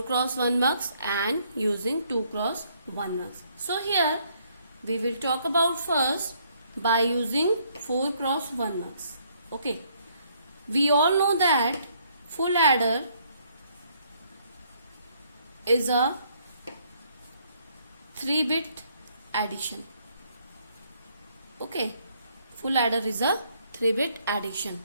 mux and using 2x1 mux. So here we will talk about first by using 4x1 mux. Okay, we all know that full adder is a 3-bit addition. Okay, full adder is a 3-bit addition.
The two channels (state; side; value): inverted; both; correlation -0.68